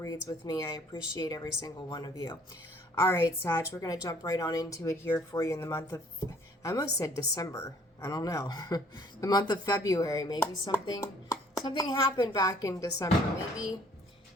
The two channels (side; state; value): both; normal; correlation 0.58